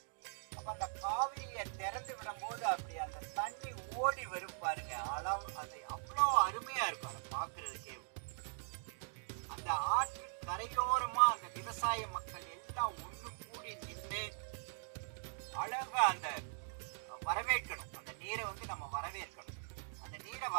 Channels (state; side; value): silent; left; digital silence